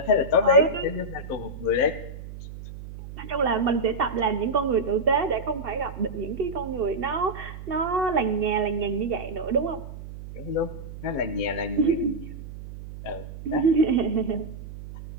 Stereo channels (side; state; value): right; noise; hum, 12 dB below the sound